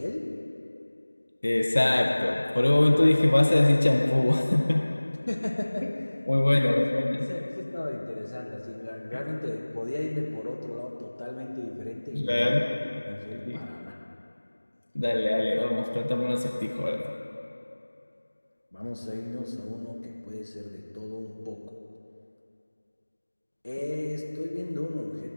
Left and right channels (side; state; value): both; inverted; correlation -1.00